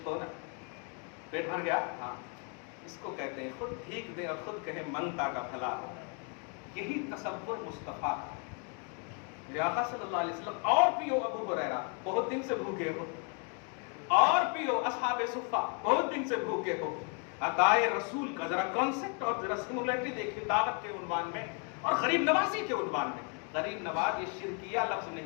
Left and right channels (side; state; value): right; quieter; 37.6 dB